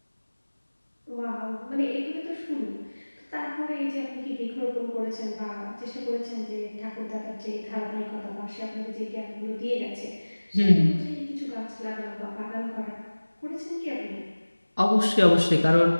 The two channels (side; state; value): both; inverted; correlation -1.00